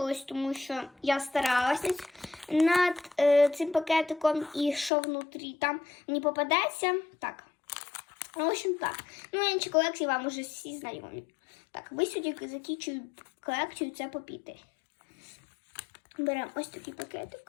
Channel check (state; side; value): drops out; right; at 4.9 s